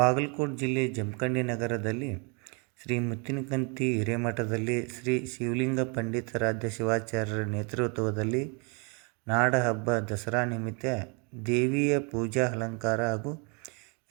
ಜಿಲ್ಲೆ ಜಮಖಂಡಿ ನಗರದಲ್ಲಿ ಶ್ರೀ ಮುತ್ತಿನಕಂತಿ ಹಿರೇಮಠದಲ್ಲಿ ಶ್ರೀ ಶಿವಲಿಂಗ ಪಂಡಿತಾರಾಧ್ಯ ಶಿವಾಚಾರ್ಯರ ನೇತೃತ್ವದಲ್ಲಿ ನಾಡಹಬ್ಬ ದಸರಾ ನಿಮಿತ್ತ ದೇವಿಯ ಪೂಜಾ ಅಲಂಕಾರ ಹಾಗೂ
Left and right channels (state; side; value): quieter; left; 34.3 dB